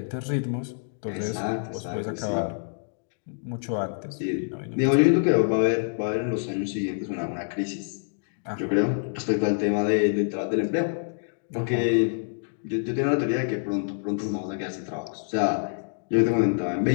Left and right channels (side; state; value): right; silent; digital silence